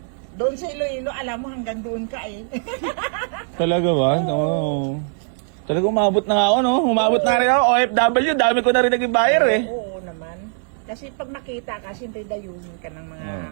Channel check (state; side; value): silent; left; digital silence